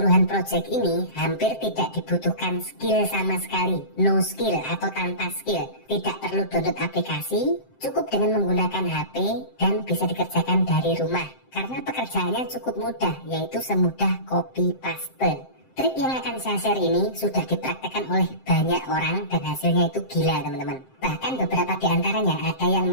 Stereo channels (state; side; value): late; right; 7.7 ms